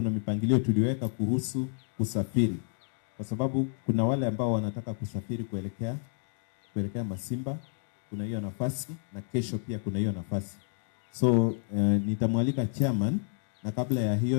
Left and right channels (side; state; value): right; silent; 58 dB below the other